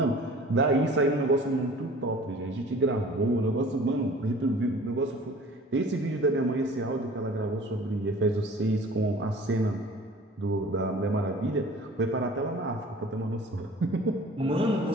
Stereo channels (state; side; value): normal; both; correlation 0.45